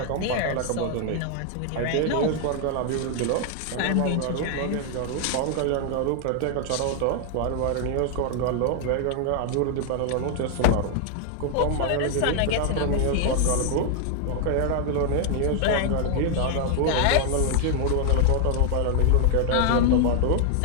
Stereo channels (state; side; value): different; both; correlation 0.00